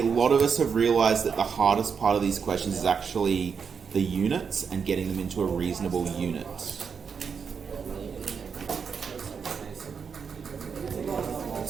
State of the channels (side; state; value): left; quieter; 6.2 dB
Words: lot of us have realised that the hardest part of these questions is actually the units and getting them into a reasonable unit.